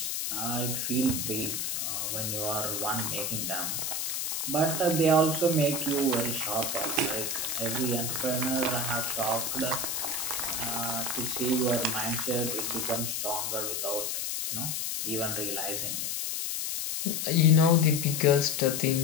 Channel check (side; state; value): left; noise; hiss, 1 dB below the sound